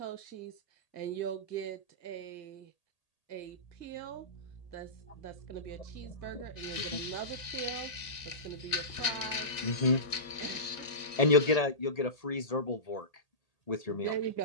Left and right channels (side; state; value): right; late; 1.7 ms